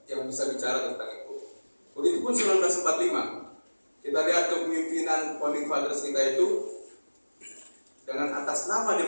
yang bisa bicara tentang itu. Begitupun 1945, kita lihat kepemimpinan founding fathers kita itu dengan atas nama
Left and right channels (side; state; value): both; inverted; correlation -1.00